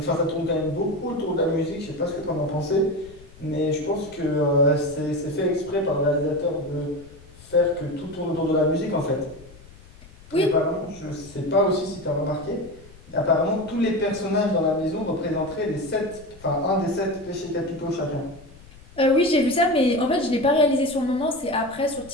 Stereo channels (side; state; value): left; noise; rumble, 22 dB below the sound